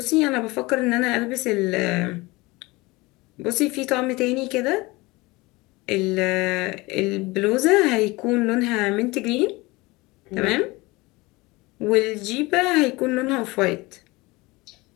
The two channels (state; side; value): quieter; right; 22.7 dB